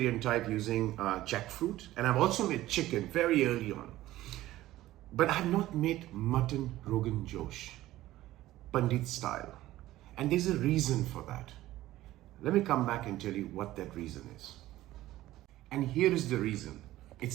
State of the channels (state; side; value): quieter; left; 15.6 dB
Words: type using jackfruit, and I've also made chicken very early on. But I have not made mutton Rogan Josh, Pandit style. And there's a reason for that. Let me come back and tell you what that reason is. And here is the reason.